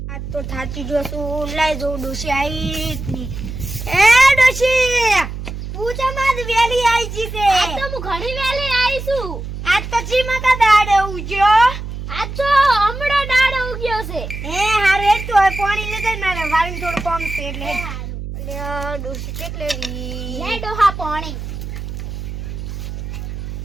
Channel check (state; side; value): noise; right; hum, 8 dB below the sound